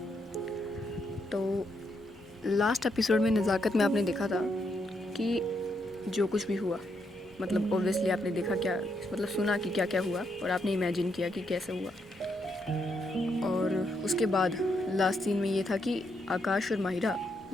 तो लास्ट एपिसोड में नज़ाकत में आपने देखा था कि जो कुछ भी हुआ, मतलब ऑब्वियसली आपने देखा क्या, मतलब सुना कि क्या क्या हुआ और आपने इमेजिन किया कि कैसे हुआ। और उसके बाद लास्ट सीन में ये था कि आकाश और माहिरा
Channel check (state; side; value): normal; both; correlation 0.79